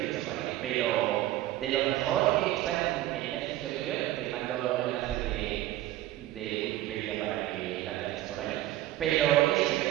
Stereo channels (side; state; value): left; quieter; 14.9 dB